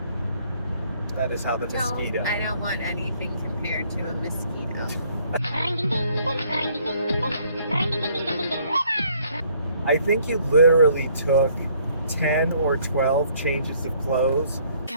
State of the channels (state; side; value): inverted; both; correlation -0.63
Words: That is how the mosquito. I don't want anything compared to a mosquito. I think you literally took 10 or 12 changes of clothes.